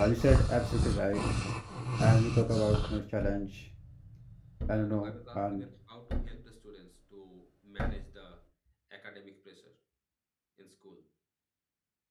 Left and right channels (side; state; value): both; identical; correlation 1.00